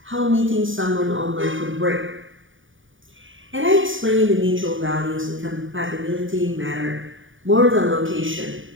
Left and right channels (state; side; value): late; left; 0.57 ms